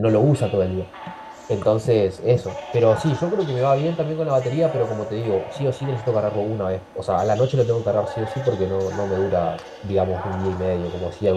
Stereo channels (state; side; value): identical; both; correlation 1.00